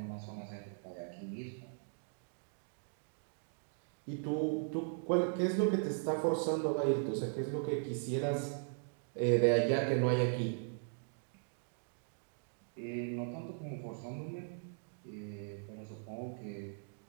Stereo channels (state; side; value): silent; left; digital silence